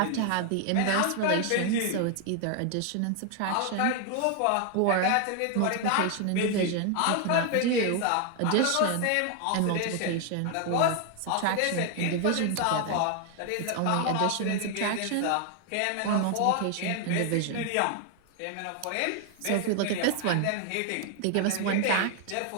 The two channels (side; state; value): both; different; correlation 0.00